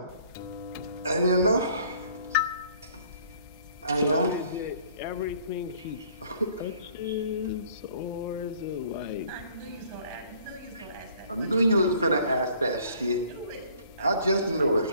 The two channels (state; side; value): inverted; both; correlation -0.57